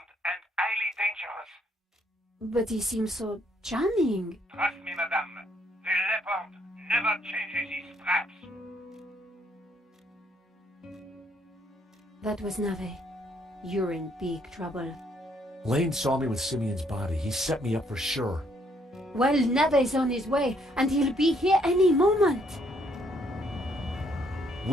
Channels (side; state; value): both; normal; correlation 0.69